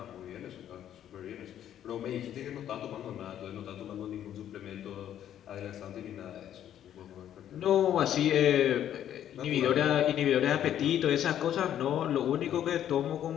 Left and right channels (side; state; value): right; quieter; 10.7 dB